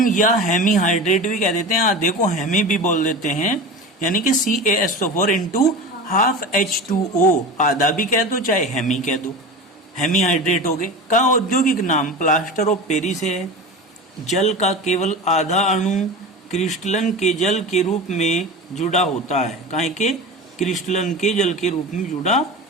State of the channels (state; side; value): normal; both; correlation 0.30